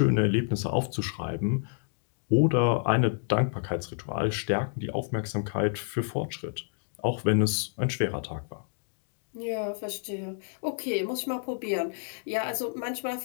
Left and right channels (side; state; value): right; silent; digital silence